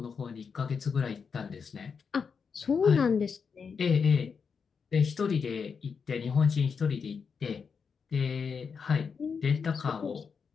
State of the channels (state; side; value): quieter; right; 5.9 dB